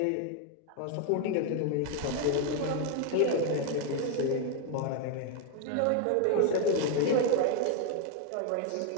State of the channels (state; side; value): different; both; correlation 0.01